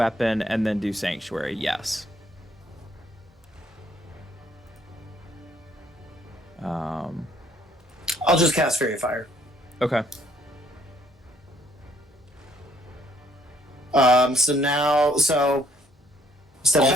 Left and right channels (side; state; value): both; normal; correlation 0.66